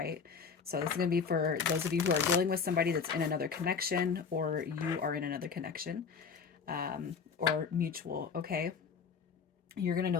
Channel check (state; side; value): quieter; right; 5.9 dB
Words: So this is going to be for those of you who are dealing with somebody that's in another connection, or you are in another connection, or mutual, okay? You're going to